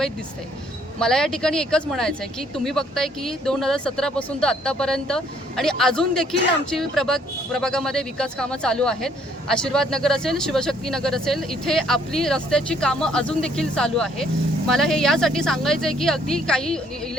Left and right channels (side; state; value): both; normal; correlation 0.64